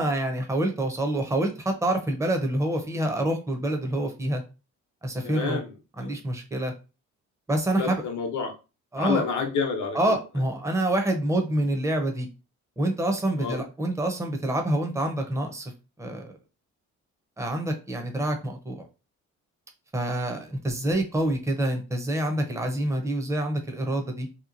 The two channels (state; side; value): normal; both; correlation 0.66